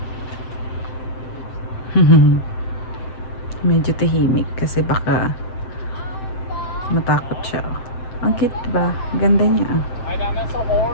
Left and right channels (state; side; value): late; right; 7.8 ms